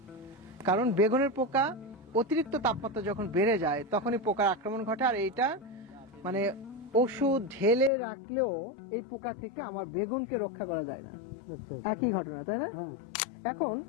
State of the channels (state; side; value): drops out; right; at 7.9 s